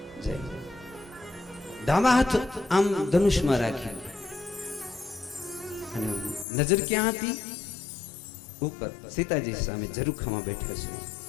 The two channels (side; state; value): right; drops out; at 6.5 s